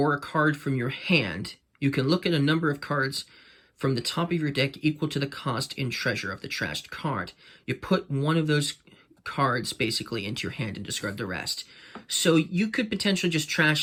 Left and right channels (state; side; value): identical; both; correlation 1.00